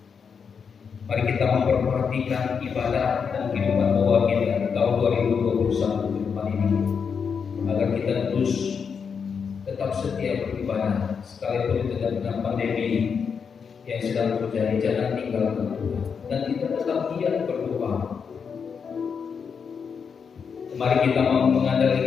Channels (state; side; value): quieter; right; 6.3 dB